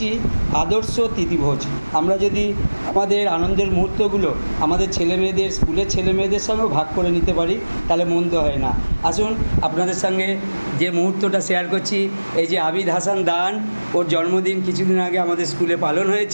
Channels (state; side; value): inverted; both; correlation -1.00